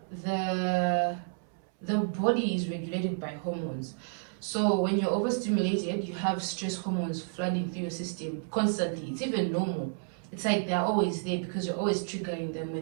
the the body is regulated by hormones. So when you're overstimulated, you have stress hormones flooding through your system constantly. It's even normal. It's like they're always there because you're always triggering them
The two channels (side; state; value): left; silent; 57 dB below the other